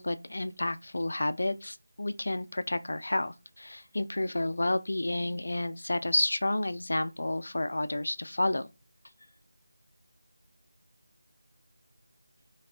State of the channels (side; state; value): both; inverted; correlation -0.99